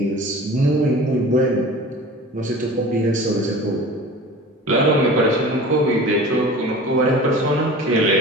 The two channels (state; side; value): normal; both; correlation 0.39